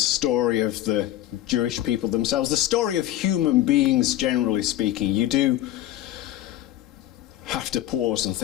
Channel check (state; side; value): quieter; right; 13.8 dB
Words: of the Jewish people themselves, the story of human beings generally speaking, you do have to pause and